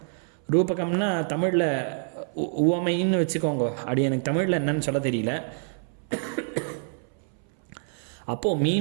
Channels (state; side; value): silent; left; 60 dB below the other